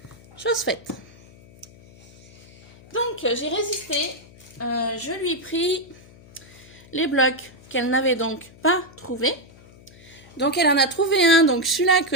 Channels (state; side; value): noise; left; hum, 23 dB below the sound